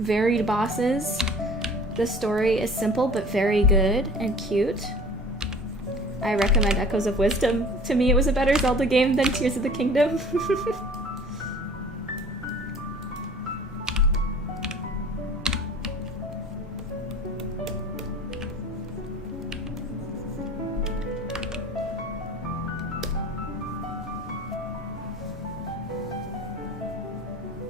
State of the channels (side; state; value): both; normal; correlation 0.46